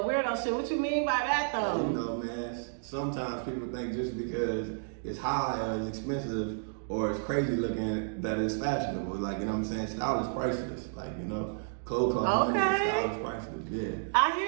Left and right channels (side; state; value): left; silent; digital silence